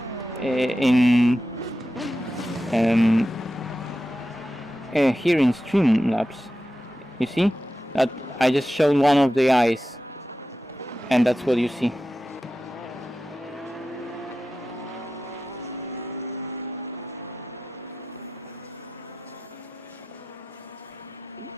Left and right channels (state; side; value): normal; both; correlation 0.92